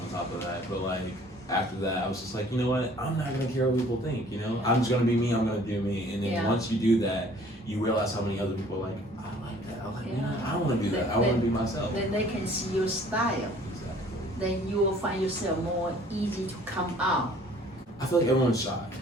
on top of that. But like, after that, I was just like, you know what? I'm not gonna care what people think. You know, I'm just gonna be me. I'm gonna do me. And then once you do that, you realize how many other people are like, I like that. I like, I want to do that. I want to be myself. Then they can see your style. Exactly. Then you will find yourself more easy to come out. I feel like everyone's shy.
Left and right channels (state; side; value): normal; both; correlation 0.54